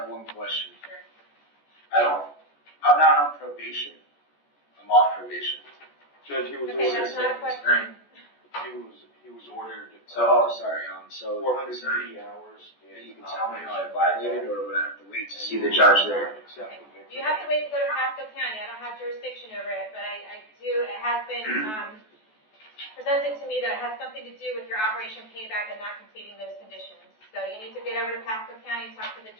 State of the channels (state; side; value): late; right; 14 ms